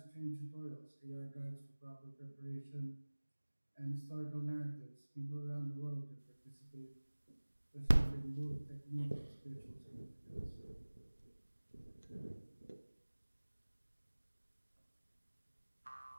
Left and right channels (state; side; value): inverted; both; correlation -1.00